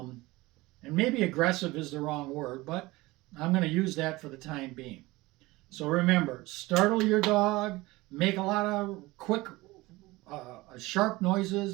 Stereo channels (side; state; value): left; quieter; 20.7 dB